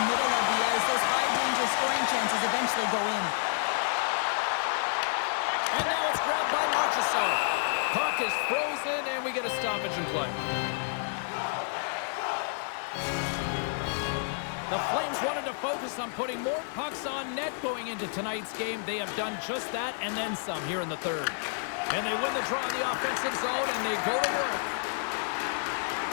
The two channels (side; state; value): right; silent; 58 dB below the other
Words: middle of the ice. Those high-danger scoring chances eventually go in. And now it's grabbed by Marchessault. Puck is frozen, and we get a stoppage in play. The Flames wanted to focus on putting more pucks on net going into tonight's game. They have done just that and then some here in the third. And they win the draw in the offensive zone, and they go to work.